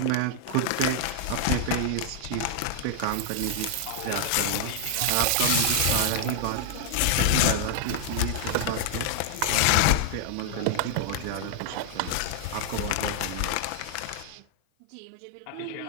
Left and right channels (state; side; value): different; both; correlation -0.01